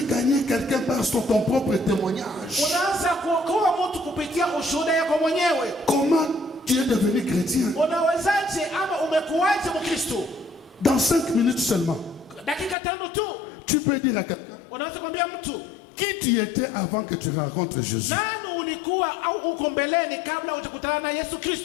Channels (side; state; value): right; drops out; at 12.8 s